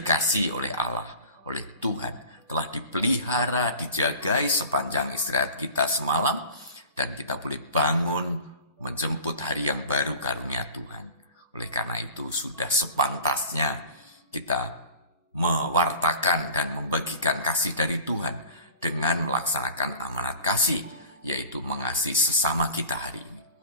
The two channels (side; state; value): both; inverted; correlation -0.41